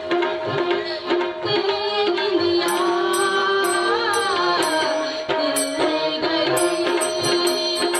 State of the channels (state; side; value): identical; both; correlation 1.00